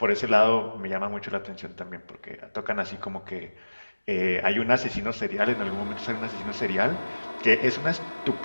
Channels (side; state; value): both; inverted; correlation -1.00